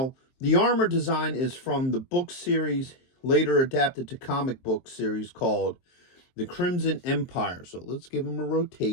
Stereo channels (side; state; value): right; late; 23 ms